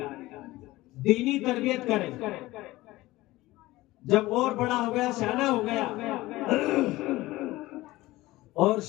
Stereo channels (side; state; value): right; quieter; 18.4 dB